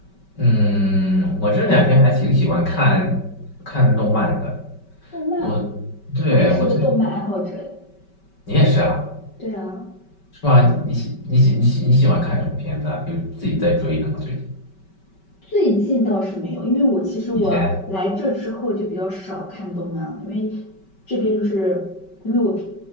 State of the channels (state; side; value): late; right; 5.2 ms